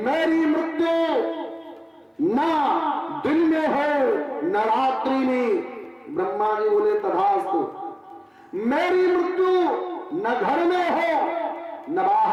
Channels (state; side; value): identical; both; correlation 1.00